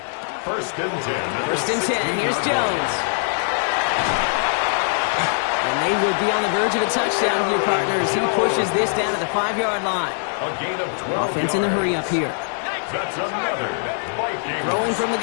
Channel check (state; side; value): silent; right; digital silence